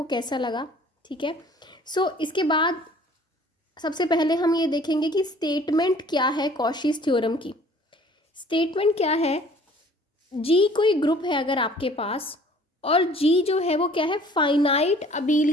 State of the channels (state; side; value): normal; both; correlation 0.52